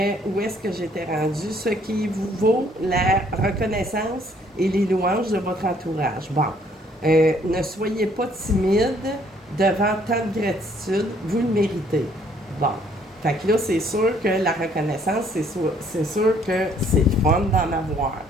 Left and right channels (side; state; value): both; normal; correlation 0.64